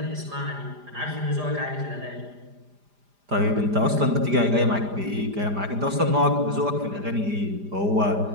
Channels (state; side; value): late; left; 4.9 ms